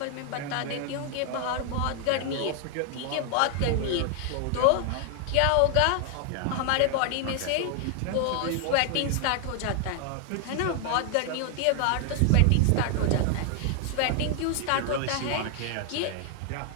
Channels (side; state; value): both; different; correlation 0.00